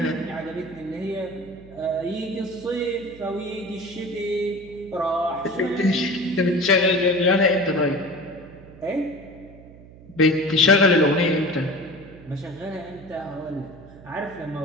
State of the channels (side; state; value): right; noise; hum, 20 dB below the sound